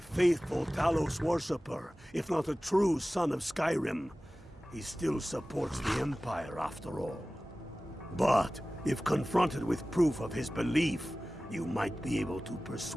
faithful Talos worshipper, if not a true son of Skyrim. He still supports the Empire, after all. But, if confronted with proof of his belief, you might be able to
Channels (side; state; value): both; normal; correlation 0.97